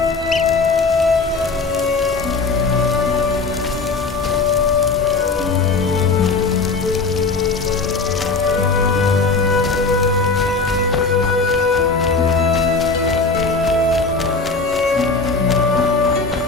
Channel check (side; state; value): right; quieter; 4.1 dB